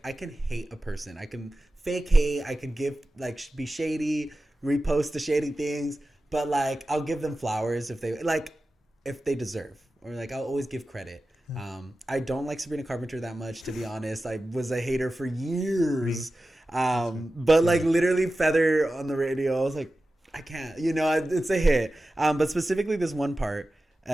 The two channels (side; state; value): both; normal; correlation 0.94